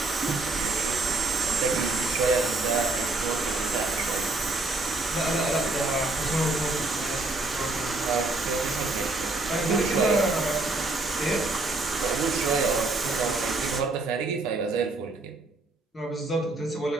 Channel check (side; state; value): left; quieter; 3.1 dB